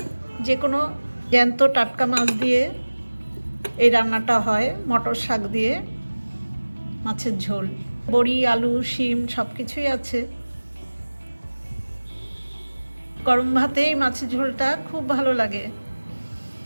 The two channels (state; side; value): inverted; both; correlation -1.00